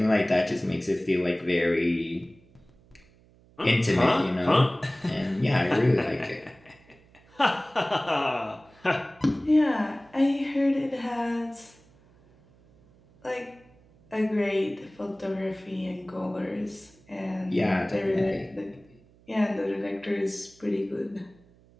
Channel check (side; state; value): right; noise; hum, 29 dB below the sound